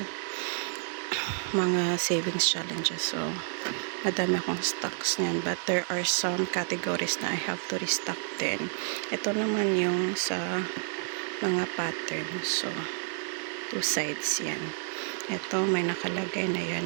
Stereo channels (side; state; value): left; silent; digital silence